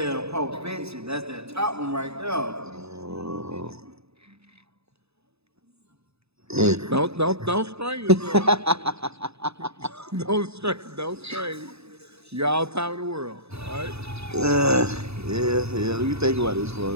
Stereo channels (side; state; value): left; late; 0.79 ms